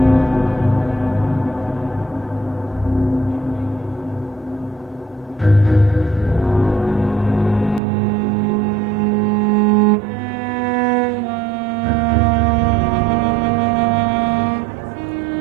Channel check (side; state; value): left; drops out; at 7.8 s